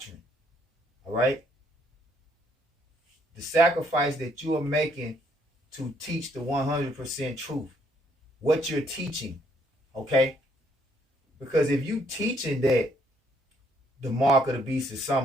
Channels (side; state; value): both; normal; correlation 0.69